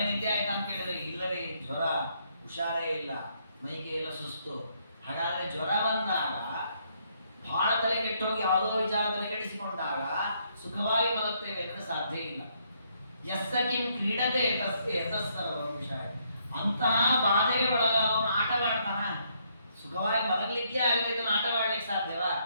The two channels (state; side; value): inverted; both; correlation -0.72